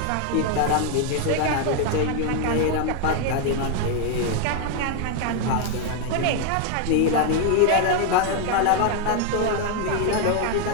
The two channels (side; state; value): both; different; correlation 0.00